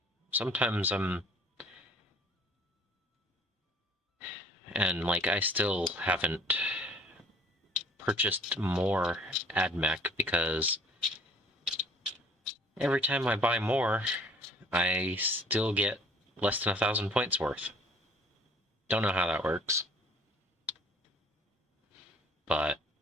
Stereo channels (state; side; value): normal; both; correlation 0.54